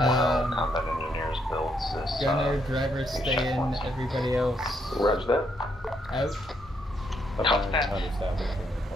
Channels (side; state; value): both; normal; correlation 0.75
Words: combat engineers builds this. Gunner, driver, stay in, everybody else. Roger that. Out.